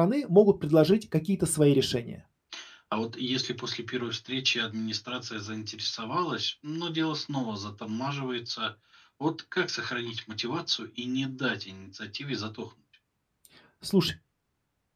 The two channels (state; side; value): identical; both; correlation 1.00